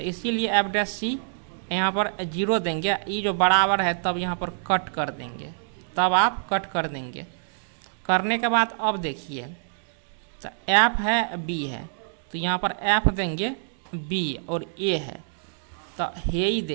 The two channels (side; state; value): left; silent; digital silence